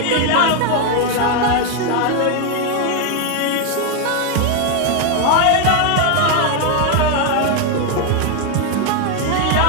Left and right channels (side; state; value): both; different; correlation 0.01